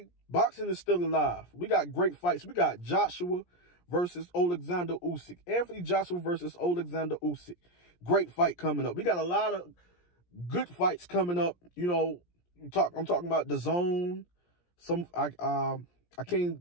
boxing is still alive. We got great fights. We got Joshua versus Alexander Usyk. Anthony Joshua versus Alexander Usyk. Great fight coming up. We got a lot of good fights coming up. You know, I'm talking about the zone. I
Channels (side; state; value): right; late; 17 ms